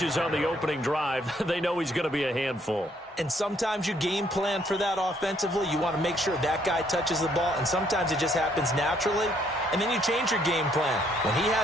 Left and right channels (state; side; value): normal; both; correlation 0.68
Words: on the opening drive. They know he's going to be a handful. And sometimes you game plan for that offensively. You want to make sure that guy touches the ball, and sometimes it just happens naturally. And then you change your game plan. When he